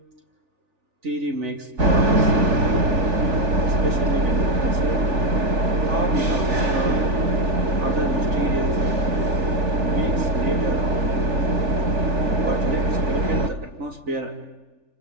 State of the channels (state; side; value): late; left; 3.4 ms